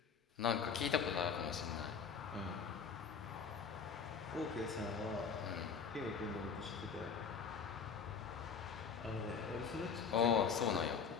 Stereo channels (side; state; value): right; quieter; 6.2 dB